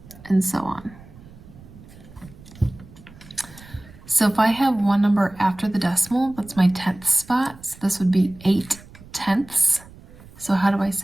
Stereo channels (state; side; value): noise; right; rumble, 21 dB below the sound